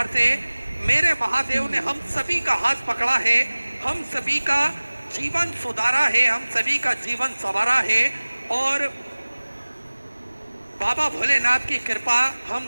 से मेरे महादेव ने हम सभी का हाथ पकड़ा है, हम सभी का जीवन सुधारा है, हम सभी का जीवन संवारा है। और बाबा भोलेनाथ की कृपा हम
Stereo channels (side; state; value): both; inverted; correlation -1.00